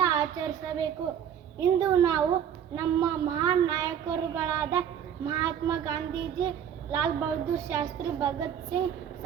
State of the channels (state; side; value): quieter; left; 8.9 dB